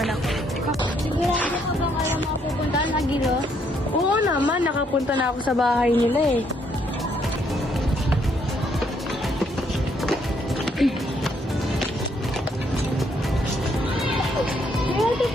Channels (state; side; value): normal; both; correlation 0.71